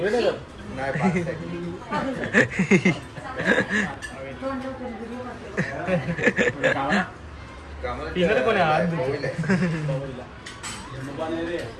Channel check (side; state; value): both; identical; correlation 1.00